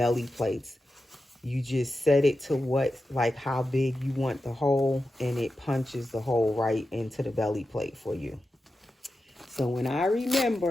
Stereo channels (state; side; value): normal; both; correlation 0.91